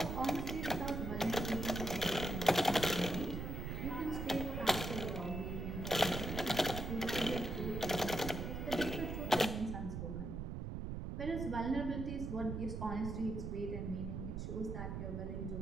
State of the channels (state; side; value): noise; right; rumble, 4 dB below the sound